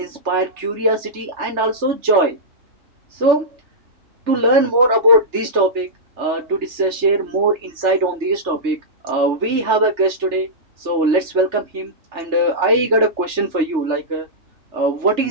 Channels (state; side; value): late; left; 3.3 ms